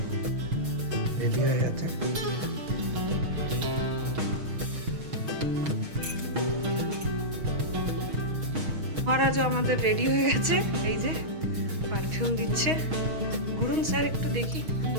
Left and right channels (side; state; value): left; late; 6.3 ms